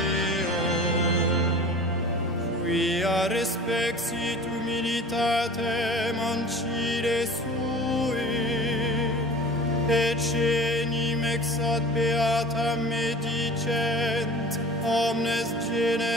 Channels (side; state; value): both; normal; correlation 0.40